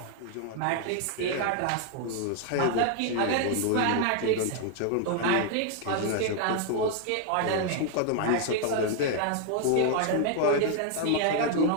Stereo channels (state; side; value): different; both; correlation 0.00